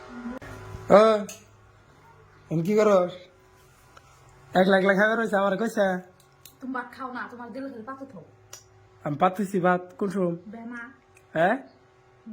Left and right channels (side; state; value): both; identical; correlation 1.00